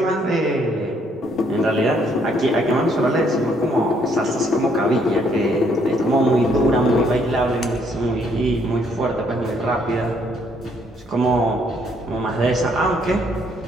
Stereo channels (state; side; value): normal; both; correlation 0.68